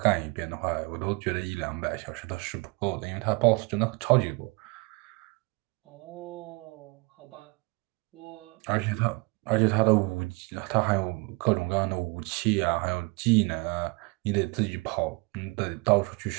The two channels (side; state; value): left; quieter; 27.9 dB